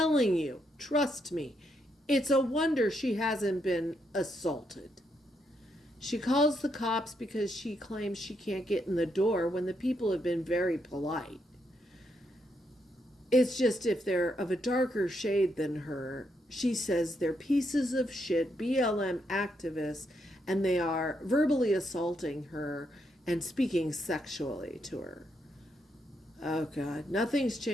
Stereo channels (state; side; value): normal; both; correlation 0.79